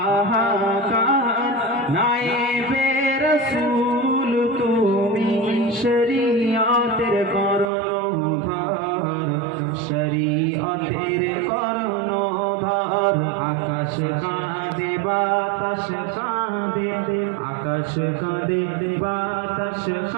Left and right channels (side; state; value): left; drops out; at 7.7 s